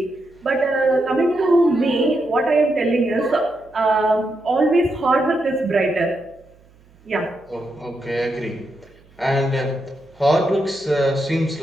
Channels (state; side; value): noise; right; hum, 29 dB below the sound